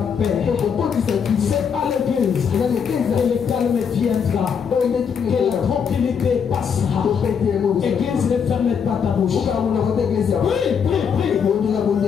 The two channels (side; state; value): right; quieter; 6.9 dB